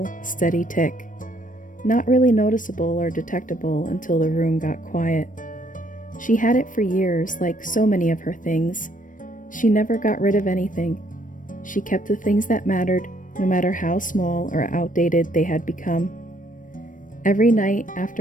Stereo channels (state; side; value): late; right; 0.38 ms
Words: steady tick. Not really noticeable or detectable until the room got quiet. She had it for years, like so many of her things. She never got rid of anything. She kept the things that mattered, no matter how small or outdated they had become. Every night